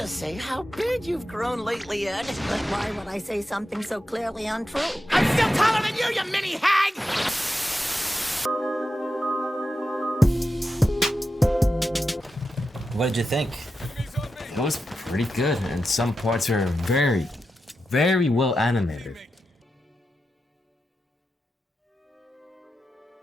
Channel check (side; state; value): both; normal; correlation 0.89